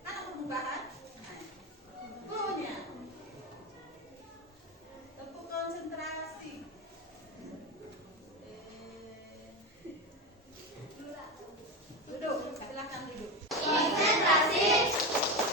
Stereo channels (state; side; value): normal; both; correlation 0.18